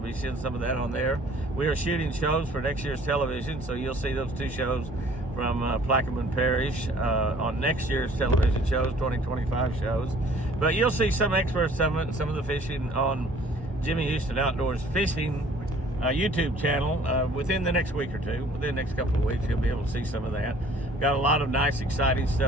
seeing some of that on there. We are shooting shows for next year's television, so you'll see those 2 shows from Plaquemine Parish on next year's television shows, 2025 shows. But you'll see some experts, some of the fishing on Jimmy Houston Outdoors Fishing YouTube channel within the next week or two. Within the next couple of weeks, you'll be able to see some of that. Got a lot of nice, exciting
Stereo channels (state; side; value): normal; both; correlation 0.54